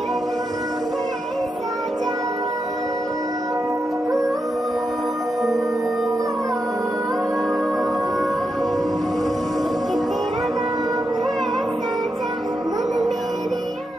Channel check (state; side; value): normal; both; correlation 0.85